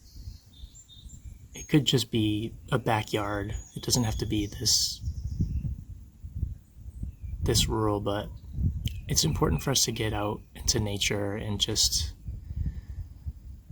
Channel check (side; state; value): both; identical; correlation 1.00